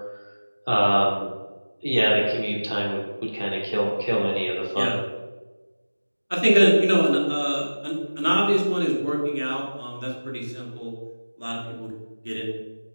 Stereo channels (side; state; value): both; inverted; correlation -1.00